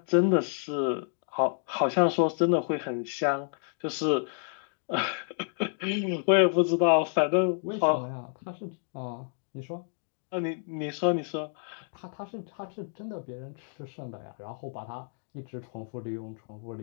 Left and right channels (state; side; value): silent; right; 58 dB below the other